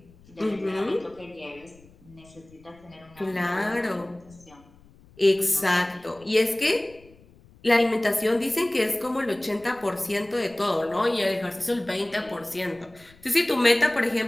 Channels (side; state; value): left; noise; rumble, 26 dB below the sound